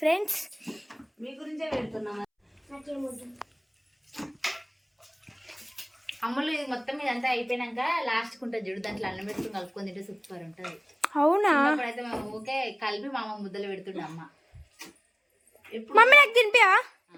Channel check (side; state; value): both; identical; correlation 1.00